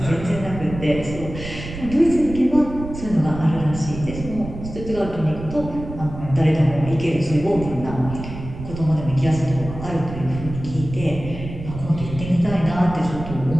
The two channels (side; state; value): right; noise; rumble, 10 dB below the sound